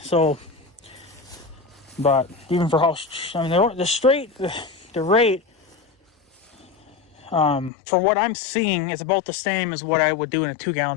So, but even for how, I mean, the rate. For what I'm seeing, it's about the same as what I would do in a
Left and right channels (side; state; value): right; drops out; at 7.7 s